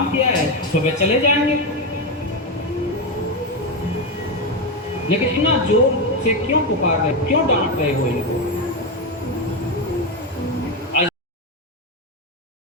किया है, सुबह चले जाएंगे। लेकिन इतना जोर से क्यों पुकार रहे, क्यों डांट रहे हो इनको?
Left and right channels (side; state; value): both; normal; correlation 0.11